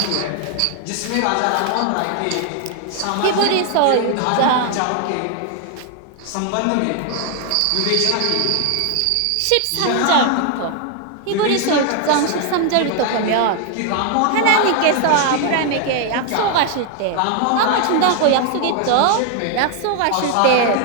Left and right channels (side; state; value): both; different; correlation 0.00